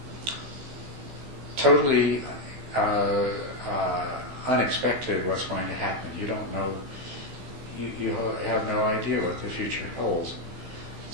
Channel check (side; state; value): left; late; 15 ms